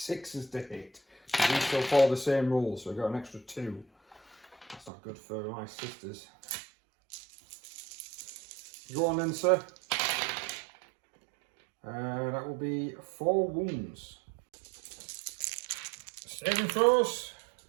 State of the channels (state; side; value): drops out; left; at 4.9 s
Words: to hit. So these still follow the same rules, so we've got an extra 2. That's not good for my sisters. Go on then, sir. That will be 4 wounds. Saving throws.